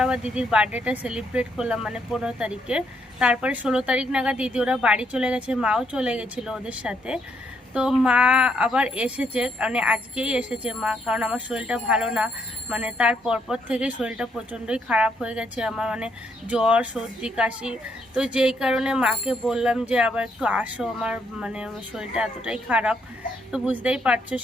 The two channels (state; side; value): normal; both; correlation 0.74